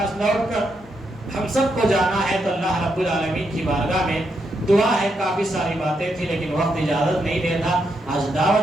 لوٹ کر ہم سب کو جانا ہے، تو اللہ رب العالمین کی بارگاہ میں دعا ہے، کافی ساری باتیں تھی لیکن وقت اجازت نہیں دیتا۔ آج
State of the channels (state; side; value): normal; both; correlation 0.81